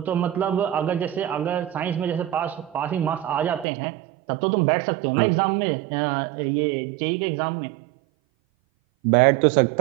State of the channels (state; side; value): drops out; left; at 3.7 s